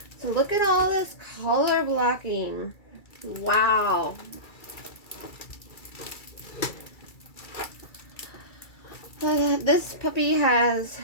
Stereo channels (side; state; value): right; late; 2.3 ms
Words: So look at all this color blocking. Wow. This puppy has